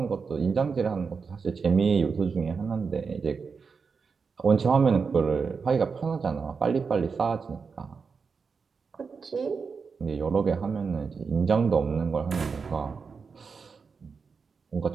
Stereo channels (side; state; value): left; quieter; 5.3 dB